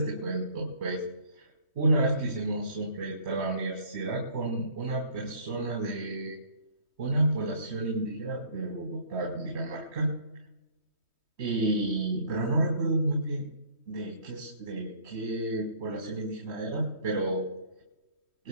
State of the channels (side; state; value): left; late; 3.2 ms